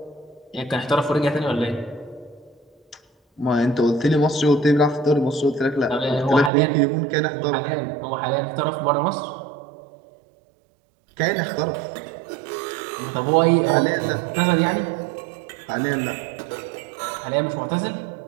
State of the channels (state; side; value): drops out; left; at 6.5 s